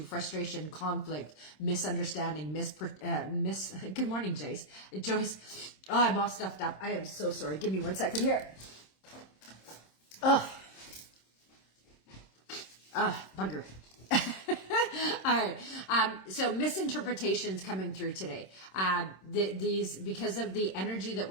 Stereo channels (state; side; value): late; right; 26 ms